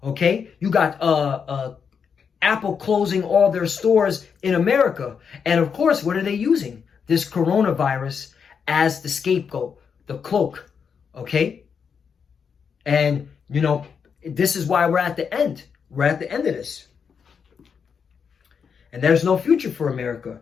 Okay, you got Apple closing all their stores in America, and of course, what are they using? This coronavirus as the scapegoat, the cloak. Okay, and this is why we're at the end. We're at the end of this. And there's no future for America.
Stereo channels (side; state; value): right; quieter; 6.5 dB